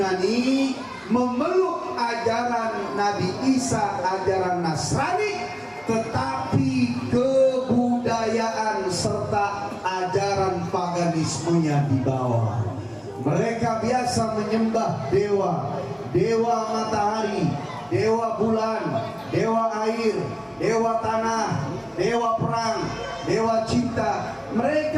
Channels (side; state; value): both; identical; correlation 1.00